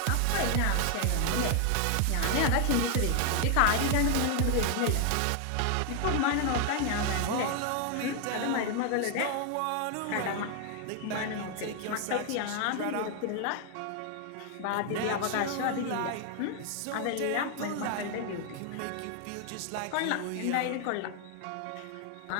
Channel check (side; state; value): both; different; correlation 0.00